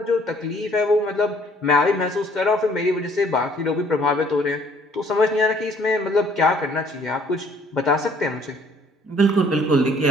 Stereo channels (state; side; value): normal; both; correlation 0.60